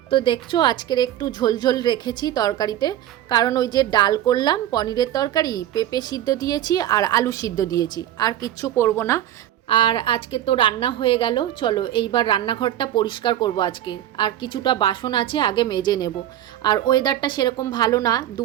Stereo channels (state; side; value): quieter; left; 12.3 dB